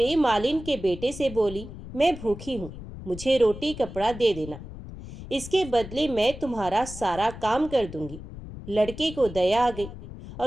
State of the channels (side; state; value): left; noise; rumble, 12 dB below the sound